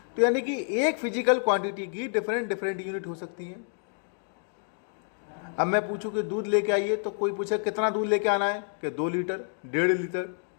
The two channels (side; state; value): right; silent; 56 dB below the other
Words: तो यानी कि एक फिजिकल क्वांटिटी की डिफरेंट यूनिट हो सकती है। अब मैं पूछूं कि दूध लेके आइए, तो कोई पूछे कितना दूध लेके आना है, कि 2 लीटर, 1.5 लीटर,